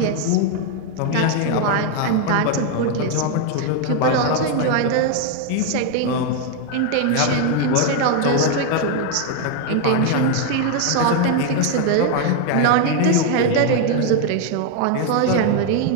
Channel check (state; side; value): different; both; correlation 0.01